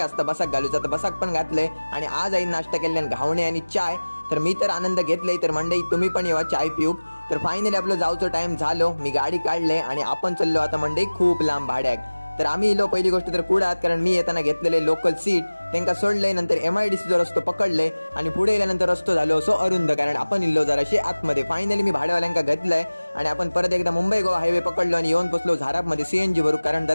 बसाक घालूचा, तर बसाक पण घातलंय. आणि आज आई नाश्ता केल्याने घावणे आणि चाय. तर मी तर आनंद घेतलाय. तर मंडळी तुम्ही पण येवा चाय पिऊ. तर फायनली आपलं जाऊचं टाइम झालो, मी गाडी काढले आणि आपण चाललो आता मंडळी खूप लांब भाड्याक. तर आम्ही इलो पहिली गोष्ट तर कुडात, कारण मी येताना घेतलेले लोकल सीट त्यांना सोडले. नंतर MIDC जो रस्तो पकडले आणि पुढे गेल्यानंतर रस्तो झालो असो अरुंद, कारण आपण इल्लो जराशी आतमध्ये. फायनली मी भाड्यावाल्यांका घेतलंय आणि आपण परत एकदा मुंबई गोवा हायवे पकडलो आणि येऊन पोचलो झारापमध्ये CNG भरू, कारण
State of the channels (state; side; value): inverted; both; correlation -1.00